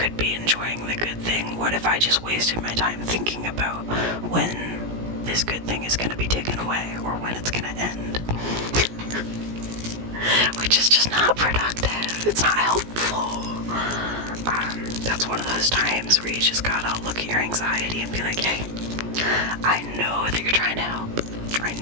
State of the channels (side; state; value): left; late; 17 ms